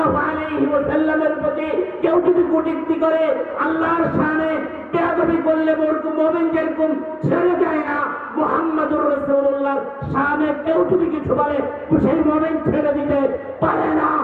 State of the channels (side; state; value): both; identical; correlation 1.00